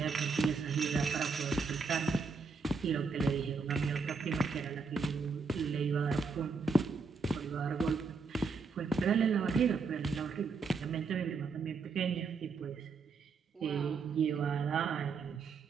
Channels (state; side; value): quieter; left; 4.6 dB